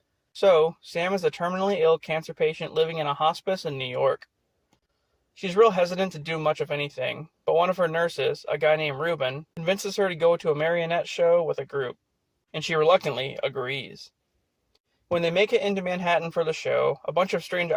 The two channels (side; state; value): both; identical; correlation 1.00